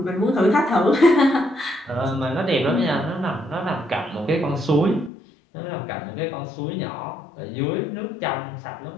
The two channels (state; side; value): drops out; right; at 5.1 s